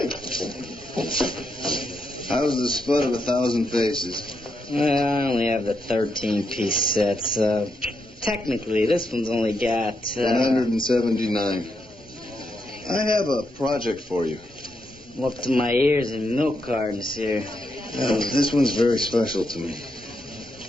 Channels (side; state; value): both; normal; correlation 0.82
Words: How's the spud of 1,000 faces? Well, I only have the 13-piece set, so technically this one's only got... 179. I have a project for you. I'm up to my ears in milk cartons here. This one's very special to me.